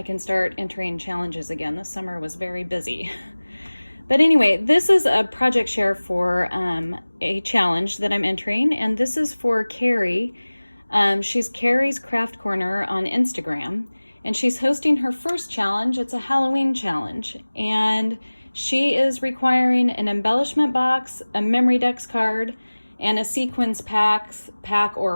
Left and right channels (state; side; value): inverted; both; correlation -1.00